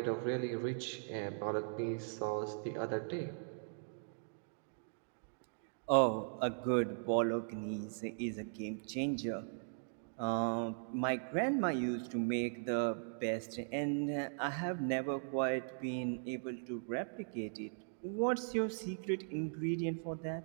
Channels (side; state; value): left; silent; digital silence